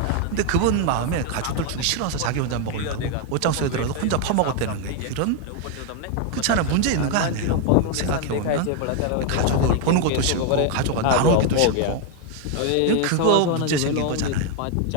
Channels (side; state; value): both; different; correlation 0.01